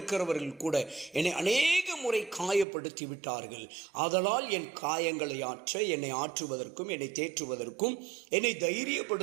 கூட என்னை அநேக முறை காயப்படுத்தி விட்டார்கள். ஆதலால் என் காயங்களை ஆற்ற, என்னை ஆற்றுவதற்கும், என்னை தேற்றுவதற்கும், என்னை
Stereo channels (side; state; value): left; drops out; at 2.7 s